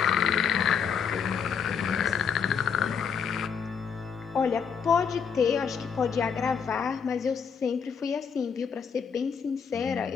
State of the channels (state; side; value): quieter; right; 6.7 dB